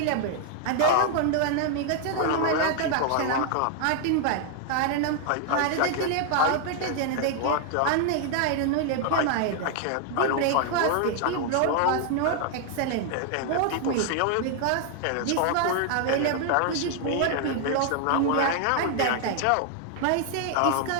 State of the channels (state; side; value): different; both; correlation 0.00